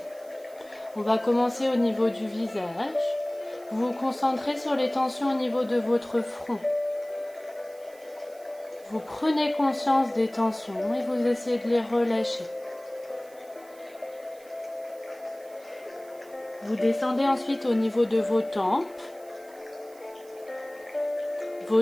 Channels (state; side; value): noise; right; hiss, 25 dB below the sound